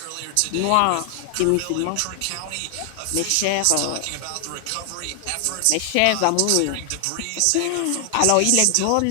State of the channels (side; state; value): both; different; correlation 0.00